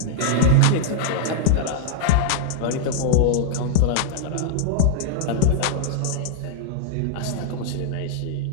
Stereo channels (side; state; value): both; different; correlation -0.01